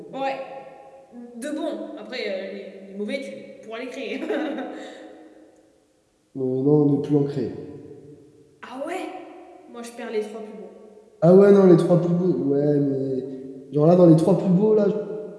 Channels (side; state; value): both; identical; correlation 1.00